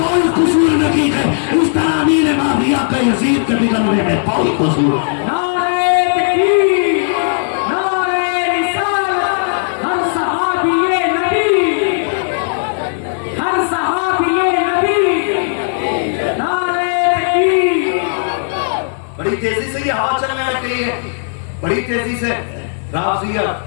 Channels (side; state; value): right; silent; digital silence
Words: قصور نہیں ہے، اس طرح امیر معاویہ کا یزید کے بگڑنے میں کوئی قصور ہے۔ بڑی تیزی سے یہ ہوا چلنے لگ گئی ہے، بڑی تیزی سے